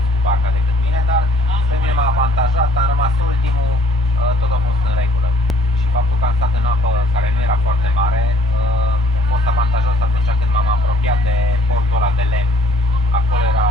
cu barca decât mine, dar pe mine m-a avantajat, am rămas ultimul, tot a fost în regulă. Și faptul că am stat în apă care nu era foarte mare, a fost avantajos atunci când m-am apropiat de portul ăla de lemn. Acolo era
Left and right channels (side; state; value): both; normal; correlation 0.59